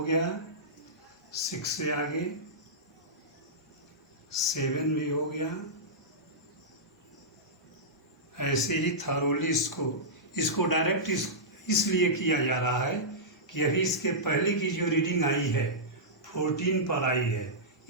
6 से आगे 7 भी हो गया। ऐसे ही थरोली इसको डायरेक्ट इसलिए किया जा रहा है कि अभी इसके पहले की जो रीडिंग आई है 14 पर आई है,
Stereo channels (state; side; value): normal; both; correlation -0.14